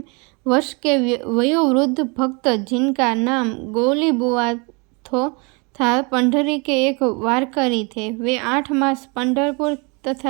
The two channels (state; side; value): quieter; left; 30.8 dB